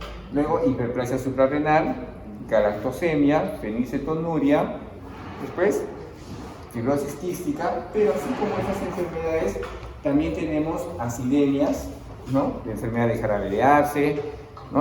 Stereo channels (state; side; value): identical; both; correlation 1.00